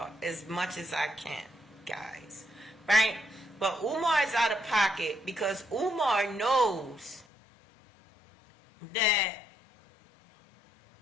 as much as I can, guys. Right? But Umar is out of pocket because Umar knows that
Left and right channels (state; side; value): drops out; right; at 7.2 s